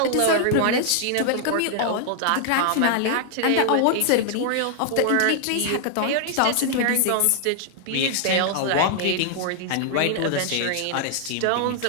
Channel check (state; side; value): different; both; correlation -0.01